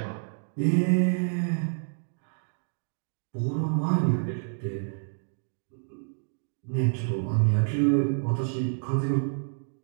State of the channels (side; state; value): left; silent; digital silence